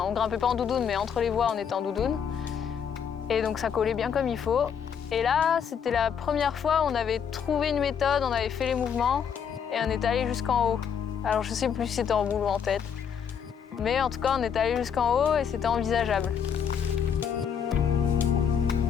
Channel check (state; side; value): quieter; right; 7.5 dB